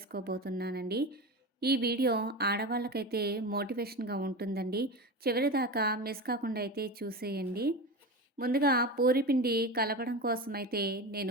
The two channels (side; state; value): both; normal; correlation 0.25